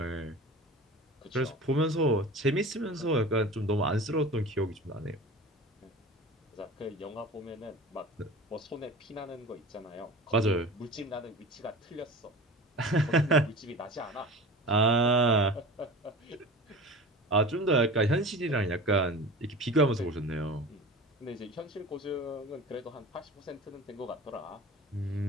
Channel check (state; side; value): normal; both; correlation 0.36